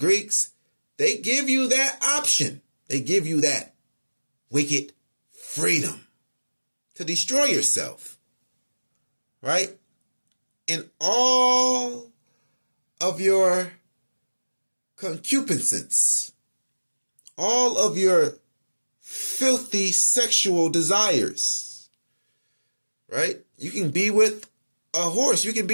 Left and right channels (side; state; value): both; inverted; correlation -1.00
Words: they give you that option. They give you that wicked freedom to destroy yourself. Right? In all of your concupiscence, all of your filthy sexual desires, right? You can be with a horse. You can